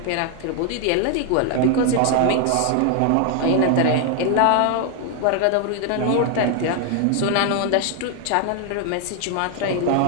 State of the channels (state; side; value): different; both; correlation 0.01